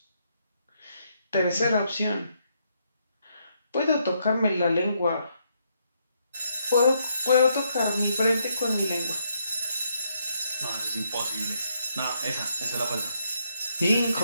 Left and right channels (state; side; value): inverted; both; correlation -0.75